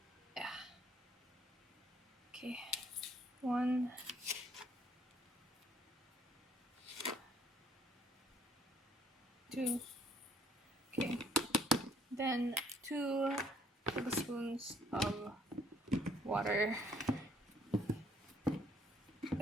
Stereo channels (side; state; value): both; normal; correlation 0.64